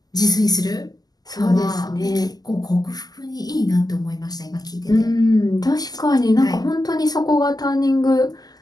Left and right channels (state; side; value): late; right; 0.19 ms